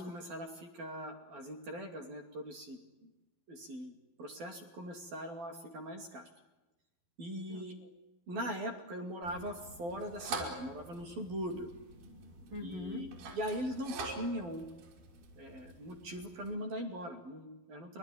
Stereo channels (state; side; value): late; left; 12 ms